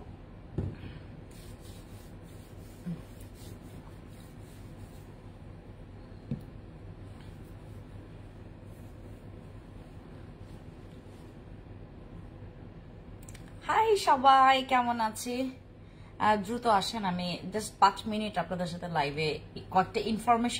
হাই সবাই, কেমন আছে? দ্রুত আসেন, আমি জাস্ট 5 মিনিট আপনাদের সাথে লাইভে কয়েকটা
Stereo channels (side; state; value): both; identical; correlation 1.00